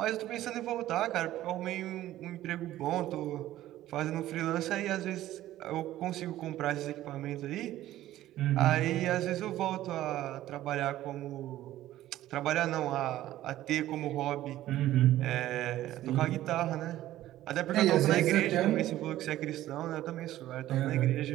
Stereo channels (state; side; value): quieter; left; 14.2 dB